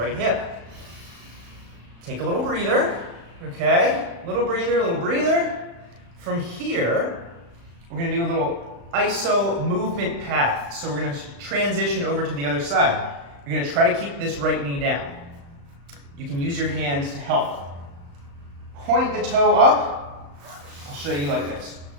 hip. Take a little breather, okay? Little breather, little breather. From here, we're gonna do a little iso movement path. So we're gonna transition over to the other side. You're gonna try to keep this right knee down. You can use your hands to help. Point the toe up. I'll show you like this.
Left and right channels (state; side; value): late; left; 35 ms